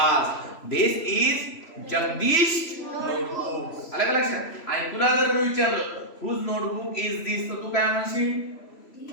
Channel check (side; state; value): right; late; 3.0 ms